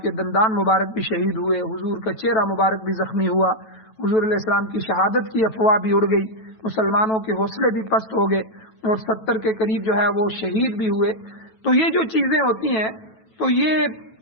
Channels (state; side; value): late; right; 9.2 ms